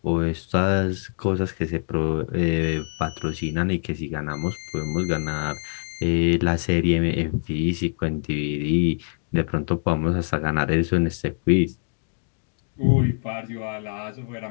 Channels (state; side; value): silent; right; digital silence